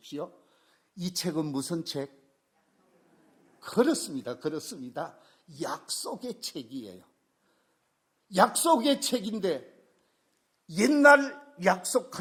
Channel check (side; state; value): both; identical; correlation 1.00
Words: 이 책은 무슨 책? 그렇습니다. 약속의 책이에요. 약속의 책인데 옛날